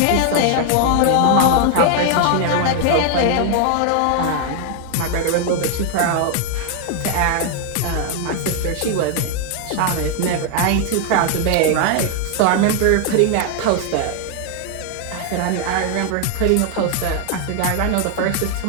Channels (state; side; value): different; both; correlation 0.00